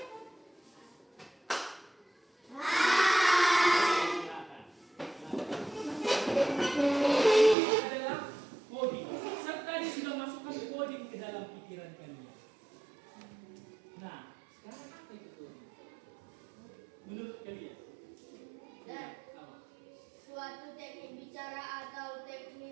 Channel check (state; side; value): drops out; left; at 7.6 s